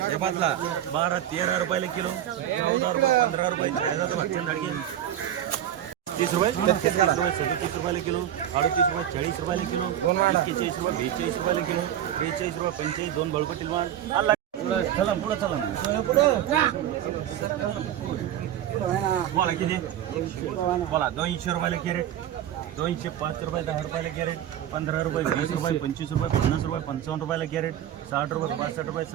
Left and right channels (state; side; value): quieter; left; 11.0 dB